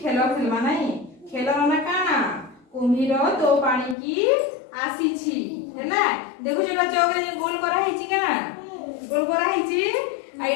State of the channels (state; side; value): drops out; right; at 4.0 s